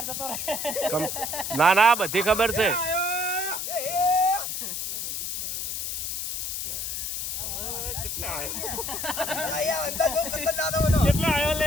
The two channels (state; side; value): noise; left; hiss, 3 dB below the sound